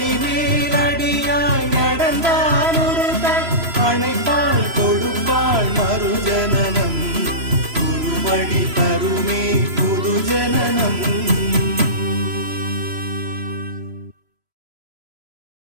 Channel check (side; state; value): left; late; 3.0 ms